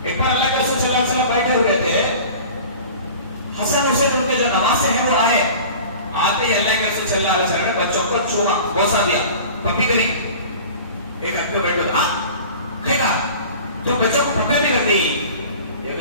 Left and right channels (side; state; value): both; inverted; correlation -0.41